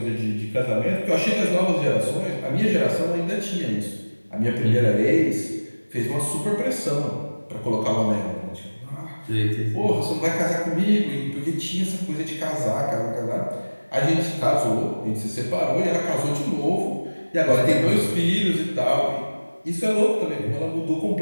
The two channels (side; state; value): both; inverted; correlation -1.00